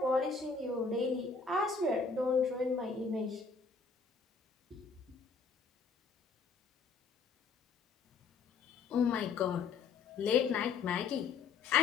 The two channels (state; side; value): quieter; right; 5.0 dB